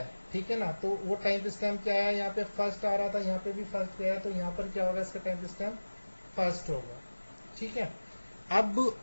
ठीक है ना, तो वो टाइम स्टैम्प क्या आया, यहाँ पे फर्स्ट आ रहा था, यहाँ पे भी फर्स्ट गया है, तो यहाँ पर क्या होगा, इसका टाइम स्टैम्प फर्स्ट होगा। ठीक है, अब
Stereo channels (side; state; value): both; inverted; correlation -1.00